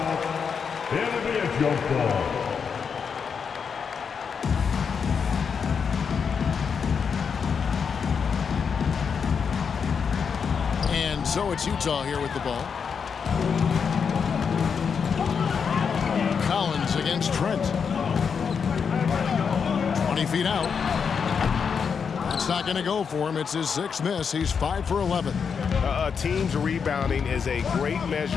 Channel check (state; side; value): quieter; right; 6.3 dB